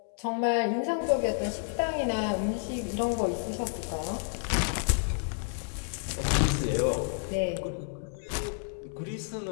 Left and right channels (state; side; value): silent; right; 58 dB below the other